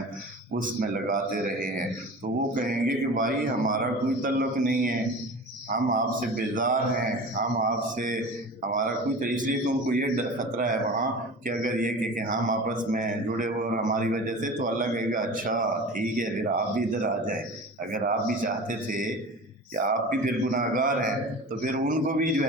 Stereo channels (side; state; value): both; normal; correlation 0.35